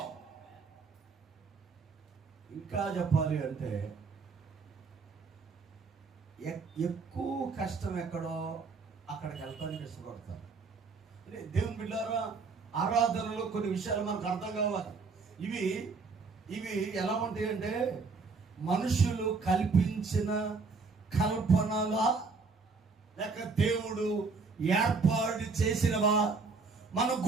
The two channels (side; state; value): left; quieter; 4.4 dB